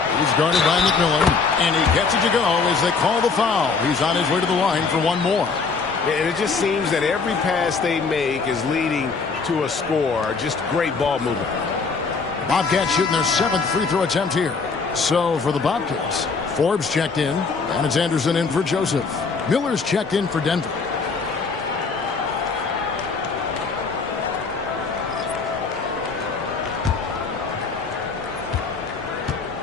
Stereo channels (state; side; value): quieter; right; 4.8 dB